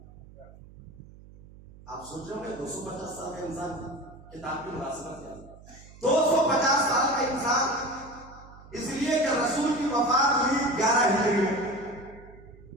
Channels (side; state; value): right; noise; hum, 20 dB below the sound